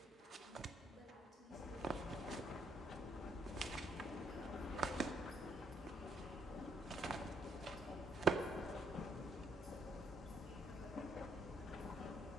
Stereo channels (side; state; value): both; normal; correlation 0.73